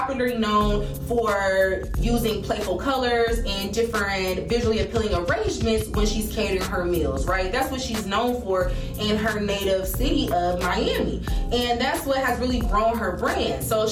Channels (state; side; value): identical; both; correlation 1.00